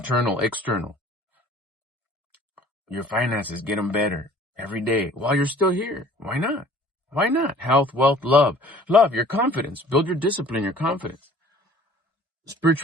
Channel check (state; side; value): normal; both; correlation 0.51